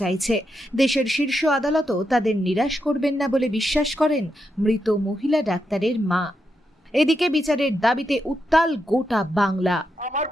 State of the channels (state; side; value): normal; both; correlation 0.84